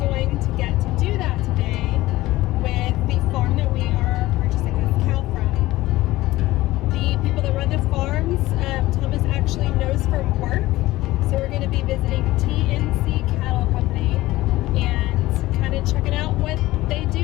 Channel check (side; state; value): right; quieter; 17.5 dB